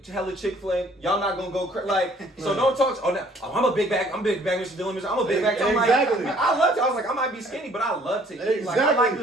hella Chick-fil-A, y'all not gonna go like. So don't talk. I'm a big bag. I'm a big bag, Mr. Dillon. I'm a big bag. I'm exactly. Like, I love to. I was like, I might be skinny, but I love to eat. Exactly. Like, I like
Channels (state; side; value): normal; both; correlation 0.58